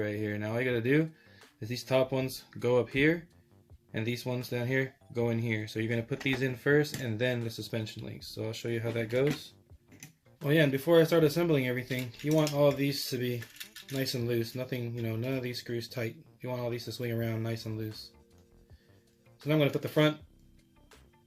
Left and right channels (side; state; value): both; identical; correlation 1.00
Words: here. Now all you gotta do is these top ones go up here, and these ones down here go in here. So you're gonna put these in first, and then the suspension links. So I'll show you how that goes. Oh yeah, and before I start assembling everything, you want all of these to be nice and loose. Nothing, none of these screws tight. You want all these to swing around nice and loose. So now I'm gonna put the front